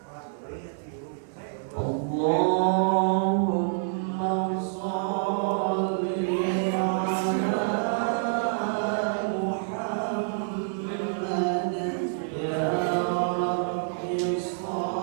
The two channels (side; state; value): left; silent; digital silence